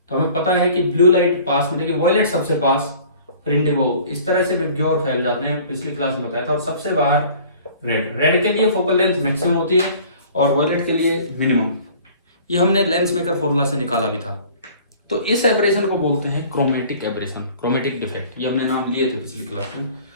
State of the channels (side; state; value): both; inverted; correlation -0.49